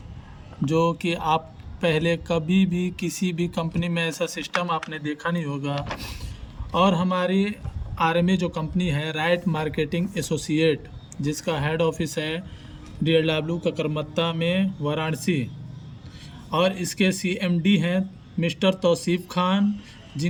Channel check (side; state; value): both; identical; correlation 1.00